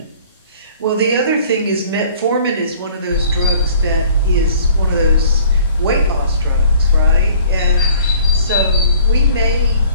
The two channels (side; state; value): both; inverted; correlation -0.53